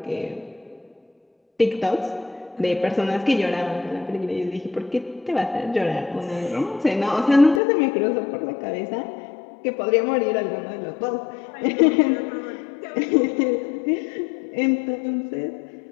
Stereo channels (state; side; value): drops out; right; at 7.6 s